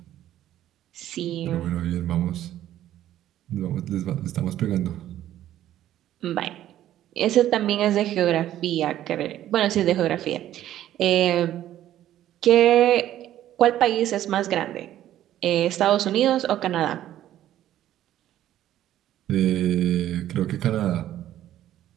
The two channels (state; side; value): quieter; left; 12.6 dB